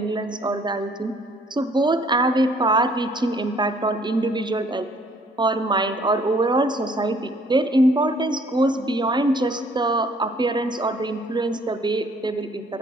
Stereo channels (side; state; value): both; normal; correlation 0.60